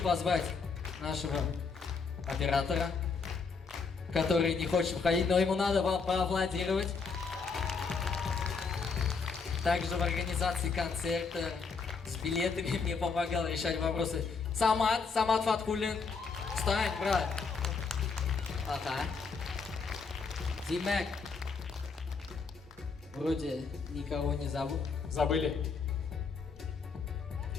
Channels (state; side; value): quieter; right; 4.9 dB